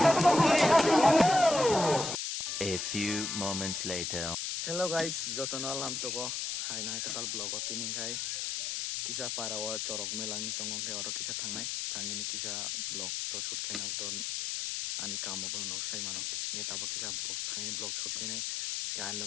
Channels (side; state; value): left; noise; hiss, 2 dB below the sound